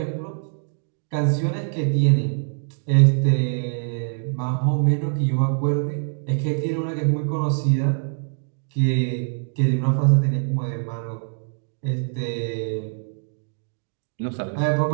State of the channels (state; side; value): silent; left; digital silence